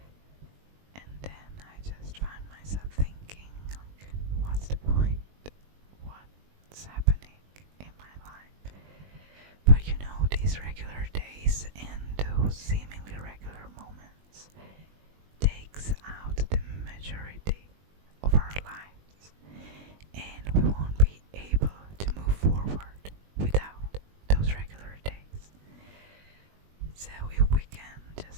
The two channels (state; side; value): late; left; 20 ms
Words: and then I just find myself thinking, like, what's the point? What's happening in my life? But these regular days and those seemingly regular moments takes out the majority of our lives, and we won't be able to move forward without those regular days. So if we can